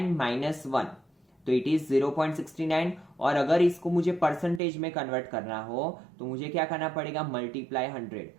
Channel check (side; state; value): left; drops out; at 4.6 s